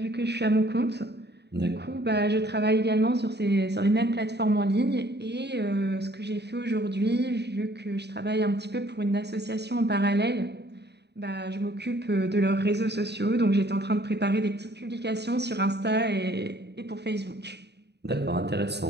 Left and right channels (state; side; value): late; left; 0.49 ms